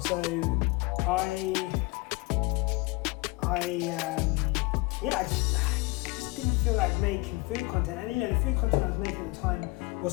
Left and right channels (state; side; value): quieter; right; 23.4 dB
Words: I just didn't feel like making food content. And you know, the food content I was making at the time